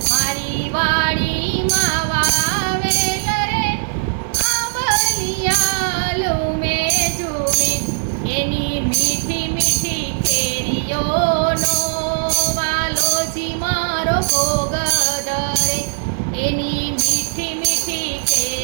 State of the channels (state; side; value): silent; left; digital silence